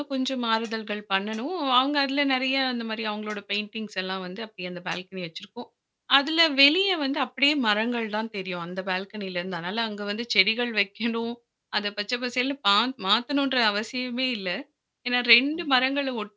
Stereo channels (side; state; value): both; identical; correlation 1.00